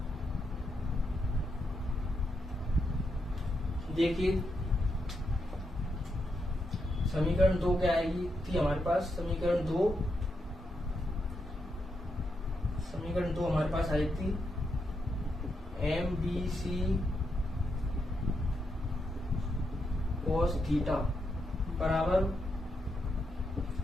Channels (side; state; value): both; normal; correlation 0.82